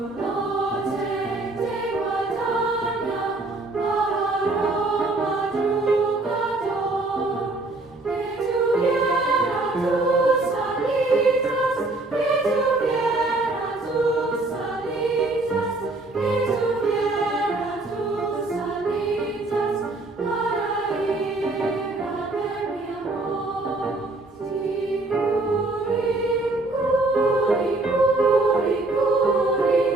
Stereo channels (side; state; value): left; quieter; 3.0 dB